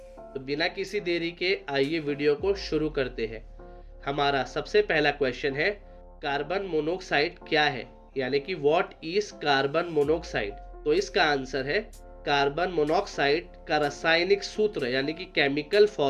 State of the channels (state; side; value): identical; both; correlation 1.00